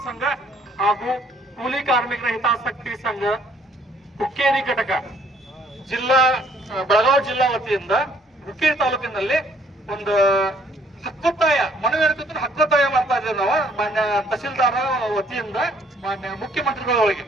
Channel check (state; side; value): normal; both; correlation 0.63